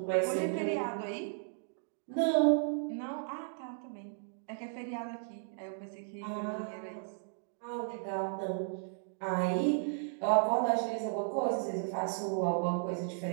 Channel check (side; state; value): left; silent; digital silence